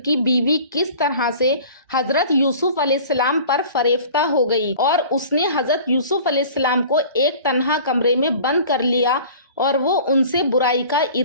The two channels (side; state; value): both; inverted; correlation -0.44